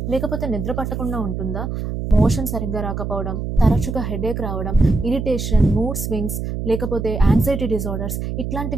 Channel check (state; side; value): noise; right; hum, 4 dB below the sound